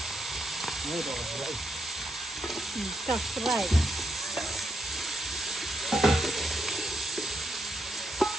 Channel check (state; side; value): normal; both; correlation 0.81